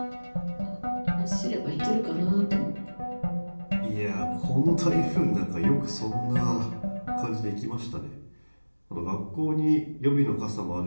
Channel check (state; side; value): inverted; both; correlation -1.00